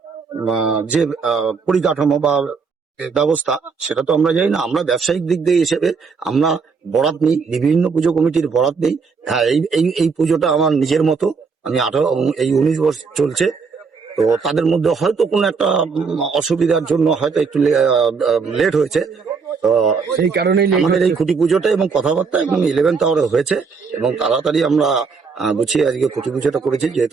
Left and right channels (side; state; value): left; quieter; 5.2 dB